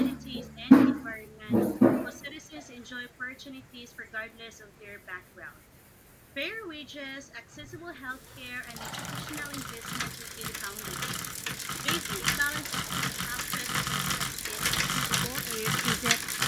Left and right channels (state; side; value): identical; both; correlation 1.00